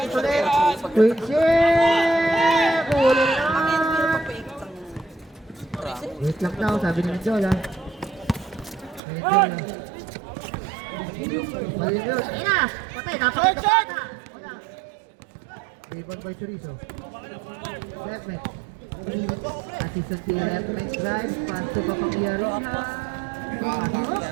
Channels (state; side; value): drops out; left; at 9.0 s